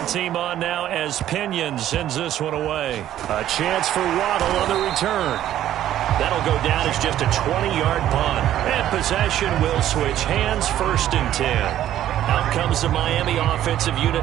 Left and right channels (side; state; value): left; quieter; 12.1 dB